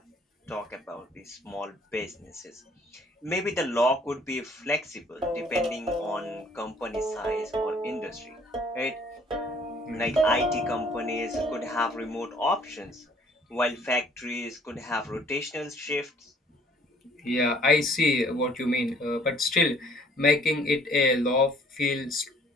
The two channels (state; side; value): normal; both; correlation 0.58